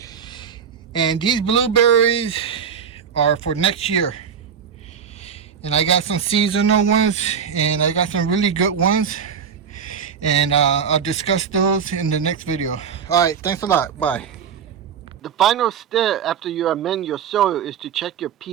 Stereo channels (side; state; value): left; quieter; 7.2 dB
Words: And these blueberries are for next year. And I got some seasonal ones and I got some really good ones. And I'll discuss those in the next video. Alright, thanks a lot. Bye. The final step after you amend your soil is to check your